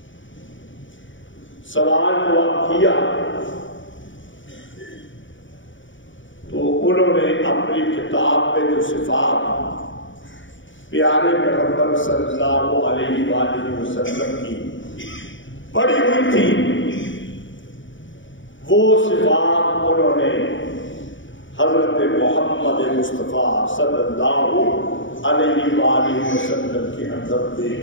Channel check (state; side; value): late; right; 0.56 ms